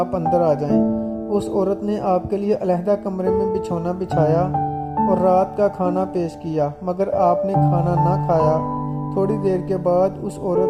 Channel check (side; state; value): both; identical; correlation 1.00